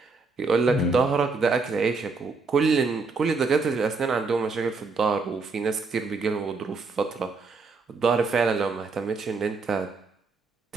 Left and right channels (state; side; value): quieter; left; 4.2 dB